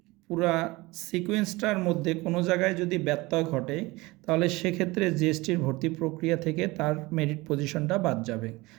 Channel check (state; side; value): quieter; left; 22.0 dB